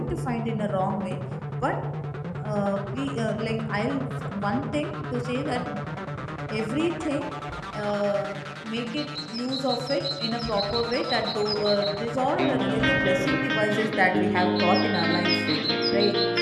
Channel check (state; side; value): identical; both; correlation 1.00